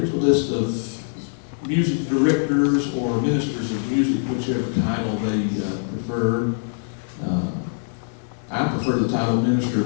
a list of music directors or ministers of music, whichever title they prefer. I prefer the title Minister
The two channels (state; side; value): silent; right; digital silence